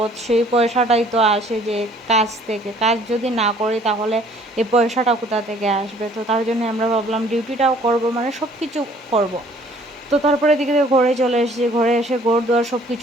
সেই পয়সাটাই তো আসে যে কাজ থেকে। কাজ যদি না করি তাহলে এই পয়সাটা কোথা থেকে আসবে? তো তার জন্য আমরা ভাবলাম ডিউটিটাও করব, মানে সব কিছু করব। তো তারপরে এদিকে ঘরে চলে এসেছি, ঘরে এসে ঘর দুয়ার সব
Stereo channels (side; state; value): both; normal; correlation 0.57